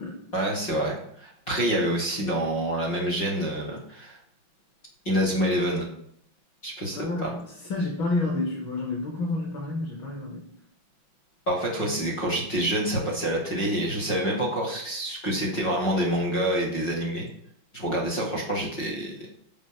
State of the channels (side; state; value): right; late; 5.5 ms